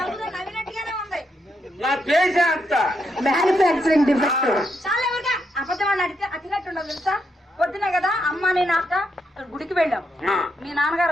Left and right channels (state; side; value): normal; both; correlation 0.80